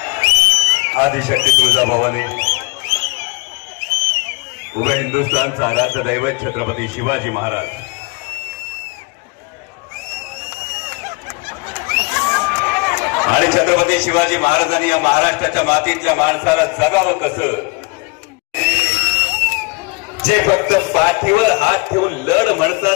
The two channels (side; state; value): right; quieter; 27.9 dB